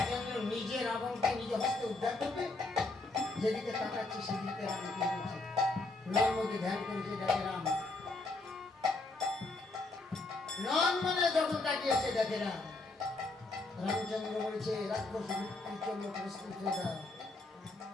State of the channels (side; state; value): right; quieter; 3.2 dB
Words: নিজে রাবণকে নিজ হস্তে উদ্ধার করবে। যেদিকে তাকাচ্ছে সেদিকে রামকে বলছে, নর্মদে ধ্যান করেছে দেখে রাম। নন মানে যখন তাকিয়েছে দেখে রাম। রামচন্দ্র বলেছে রাক্ষস মৃত্যুর জন্য প্রস্তুত হয়ে দাও।